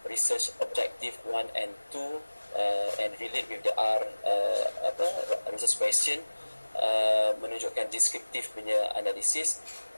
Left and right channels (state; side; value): inverted; both; correlation -1.00